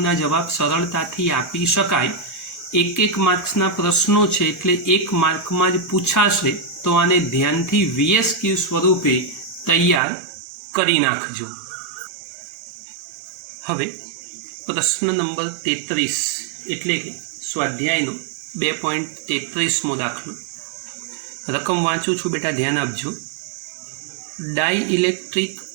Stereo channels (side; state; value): left; drops out; at 10.0 s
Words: જવાબ સરળતાથી આપી શકાય. એક માર્ક્સના પ્રશ્નો છે એટલે 1 માર્કમાં જ પૂછાશે, તો આને ધ્યાનથી VS ક્યુબ સ્વરૂપે તૈયાર કરી નાખજો. હવે પ્રશ્ન નંબર 33 એટલે કે સ્વાધ્યાયનો 2.33મો દાખલો. રકમ વાંચું છું બેટા, ધ્યાન આપજો. ડાઇઇલેક્ટ્રિક